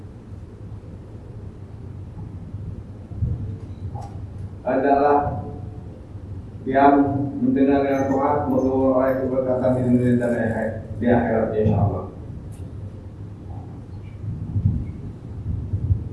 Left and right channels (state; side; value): identical; both; correlation 1.00